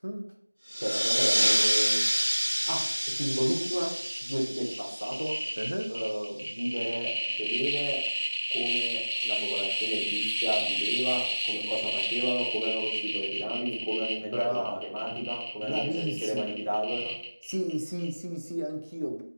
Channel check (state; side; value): inverted; both; correlation -1.00